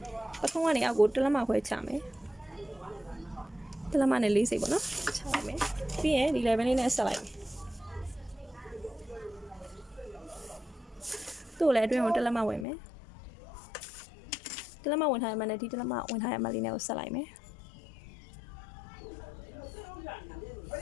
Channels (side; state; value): right; drops out; at 12.7 s